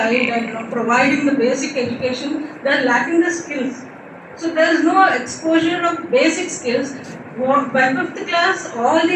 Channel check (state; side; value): identical; both; correlation 1.00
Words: and providing the basic education, they are lacking the skills. So there is no exposure of basic skills. By 5th class, all